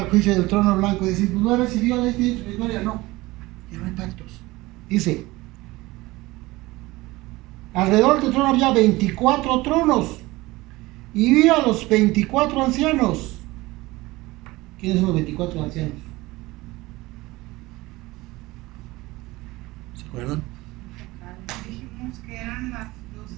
juicio del trono blanco y decir, pues no recibió la victoria, no, ya no hay pactos. Dice, alrededor del trono había 24 tronos y vi a los 24 ancianos. ¿Quiénes son los 24 ancianos? ¿Se acuerdan? Dijimos que eran las 12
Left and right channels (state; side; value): quieter; left; 20.2 dB